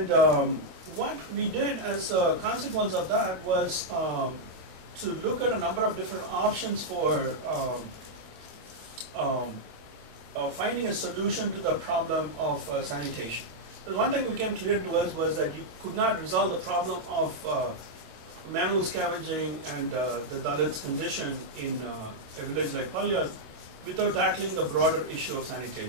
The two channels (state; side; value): late; left; 27 ms